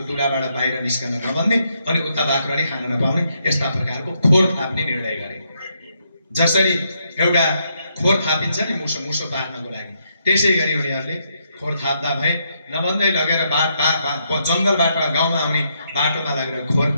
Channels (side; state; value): both; inverted; correlation -0.77